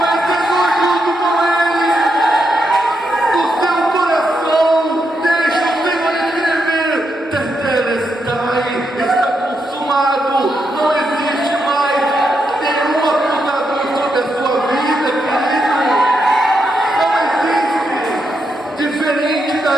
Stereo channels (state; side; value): normal; both; correlation 0.82